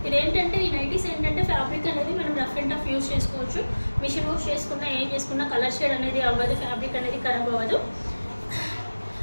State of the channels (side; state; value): both; inverted; correlation -1.00